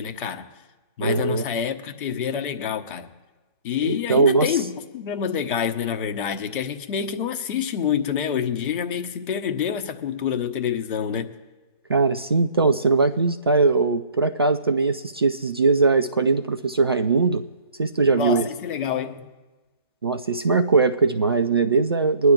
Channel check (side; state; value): both; inverted; correlation -0.50